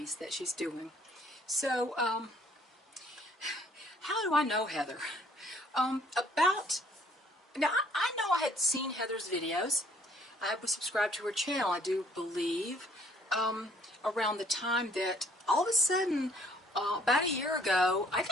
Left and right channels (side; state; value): both; normal; correlation 0.62